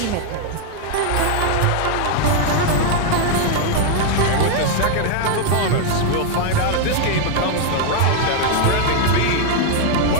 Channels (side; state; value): both; different; correlation 0.00